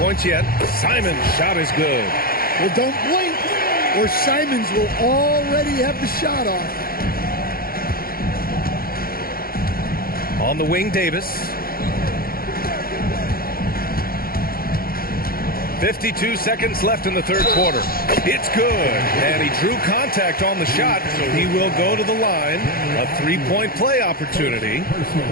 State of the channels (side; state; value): right; late; 0.43 ms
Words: points yet. Simon's shot is good. Well, don't blink, or Simons will already have the shot off. On the wing, Davis. 52 seconds left in the third quarter. It's good. And he drew contact on the shot, so he will go to the line. A three-point play opportunity.